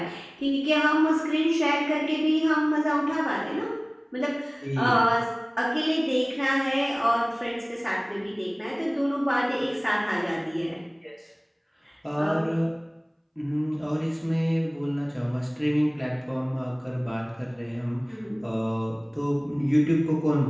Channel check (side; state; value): both; identical; correlation 1.00